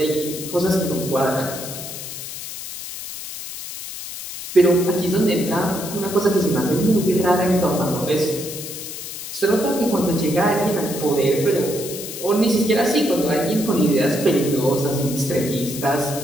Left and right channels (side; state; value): left; noise; hiss, 9 dB below the sound